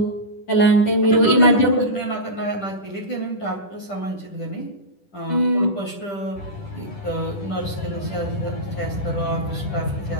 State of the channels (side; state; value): right; late; 10 ms